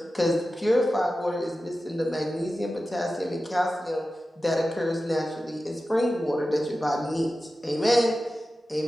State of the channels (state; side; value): normal; both; correlation 0.94